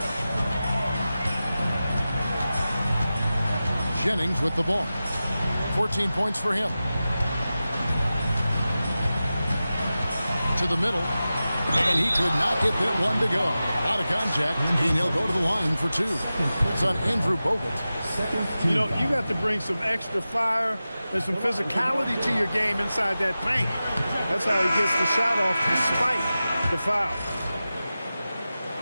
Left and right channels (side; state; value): both; inverted; correlation -0.94